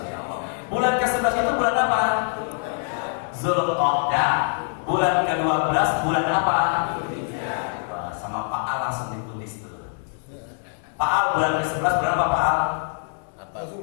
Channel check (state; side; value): silent; right; 57 dB below the other